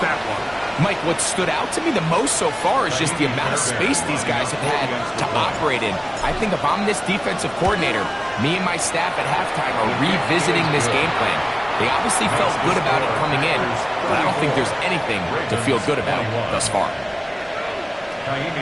that one. Mike, what stood out to me the most so far is just the amount of space these guys have had to operate in. I think if I'm this defensive coordinator, me and my staff at halftime are revisiting this game plan. They obviously felt good about it coming in, but I don't think there's anything to feel good about thus far.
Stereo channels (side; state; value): both; identical; correlation 1.00